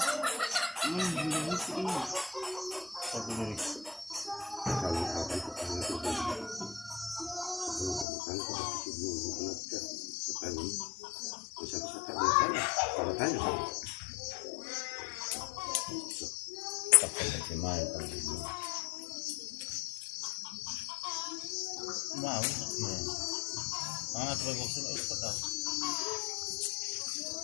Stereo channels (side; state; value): right; drops out; at 8.1 s